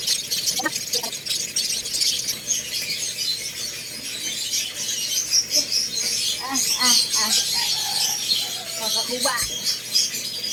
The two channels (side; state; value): both; identical; correlation 1.00